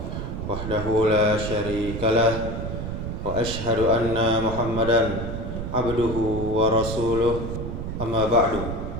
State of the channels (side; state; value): right; noise; rumble, 5 dB below the sound